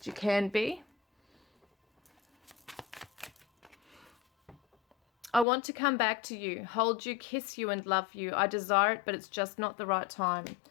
you can be. I want to come back to you, hold you, kiss you and love you. I desire it, but it's just not the right time.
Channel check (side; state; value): right; drops out; at 5.5 s